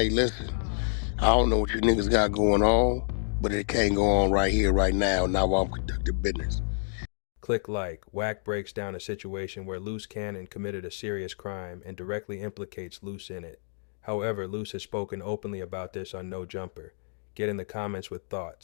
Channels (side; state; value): right; silent; digital silence